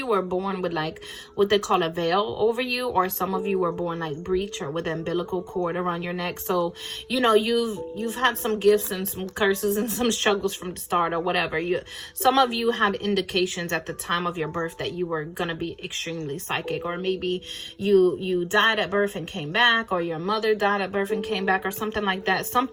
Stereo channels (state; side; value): identical; both; correlation 1.00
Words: were born with like what they call a veil over you, or some of you were born like breech or with an umbilical cord around your neck. So, you know, you've had some gifts and some curses and some struggles from the start or whatever. Some of you had indications at the time of your birth that you were gonna be extremely psychic, or maybe you died at birth and came back, or your mother died at birth and came back, or something like that.